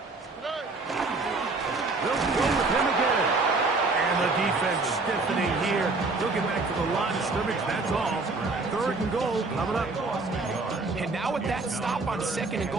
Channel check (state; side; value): quieter; left; 3.6 dB